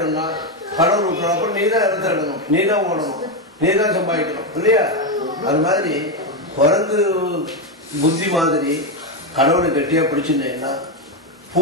கடவுள் விட்டுறப்ப நீ தான் இடத்த இடணும், நீ தான் ஓடணும், நீ தான் சம்பாதிக்கணும் இல்லையா? அது மாதிரி குரங்கு புத்தி மாதிரி கடவுளை கட்டியா பிடிச்சிருந்தேன்னா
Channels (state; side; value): normal; both; correlation 0.08